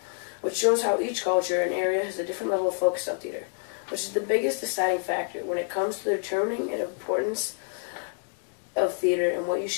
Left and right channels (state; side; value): silent; right; 60 dB below the other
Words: which shows how each culture and area has a different level of focus on theater, which is the biggest deciding factor when it comes to determining the importance of theater and what you